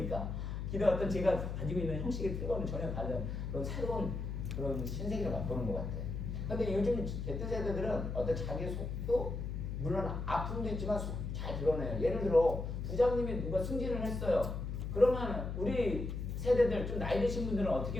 기도 어떤 제가 가지고 있는 형식의 틀과는 전혀 다른 그런 새로운 그런 신세계를 맛보는 것 같아요. 근데 요즘 Z세대들은 어떤 자기의 속도 물론 아픔도 있지만 잘 드러내요. 예를 들어 부장님이 누가 승진을 했어요. 그러면 우리 세대들 좀 나이 드신 분들은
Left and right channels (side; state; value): left; noise; hum, 4 dB below the sound